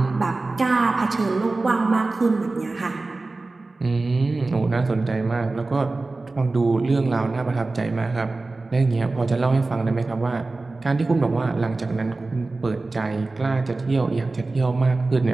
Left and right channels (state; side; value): quieter; left; 3.4 dB